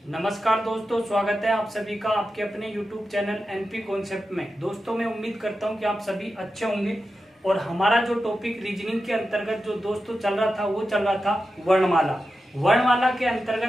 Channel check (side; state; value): both; normal; correlation 0.91